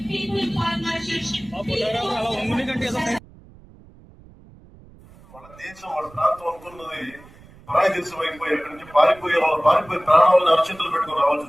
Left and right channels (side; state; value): right; noise; rumble, 23 dB below the sound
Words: వాళ్ళ దేశం వాళ్ళ ప్రాంతం అనుకున్నది పరాయి దేశం అయిపోయి అక్కడి నుంచి పారిపోయి ప్రాణాలను అరచేతులు పెట్టుకుని రావాల్సి